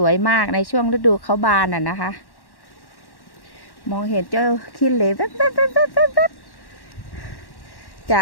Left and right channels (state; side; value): late; right; 1.1 ms